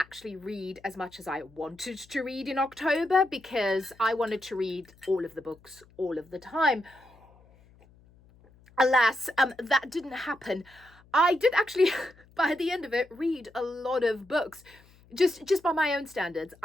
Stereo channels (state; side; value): noise; left; hum, 27 dB below the sound